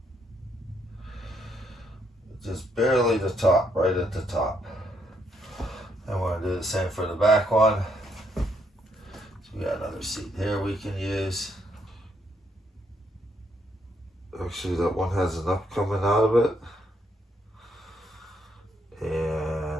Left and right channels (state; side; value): normal; both; correlation 0.74